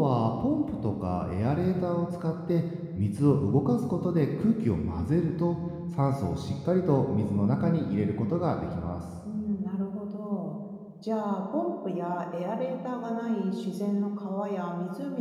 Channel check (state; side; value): identical; both; correlation 1.00